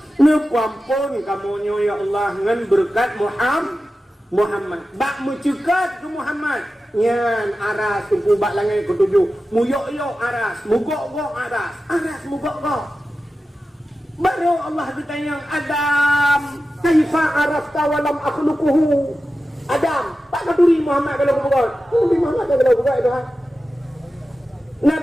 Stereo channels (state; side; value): normal; both; correlation 0.93